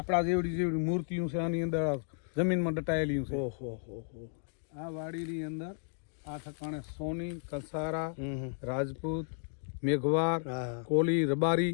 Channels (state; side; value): silent; right; 56 dB below the other